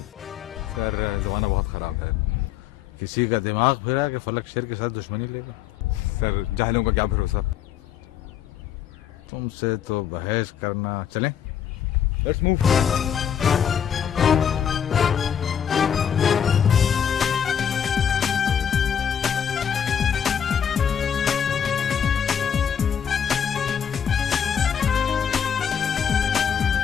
सर जमाना बहुत खराब है। किसी का दिमाग फिरा कि फलक शेर के साथ दुश्मनी लेगा। सर जाहिलों का क्या भरोसा। तुमसे तो बहस करना। चलें? Let's move.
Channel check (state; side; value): quieter; right; 8.5 dB